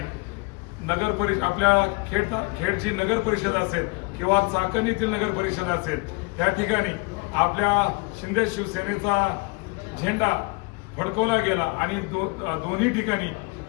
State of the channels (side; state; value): right; quieter; 26.9 dB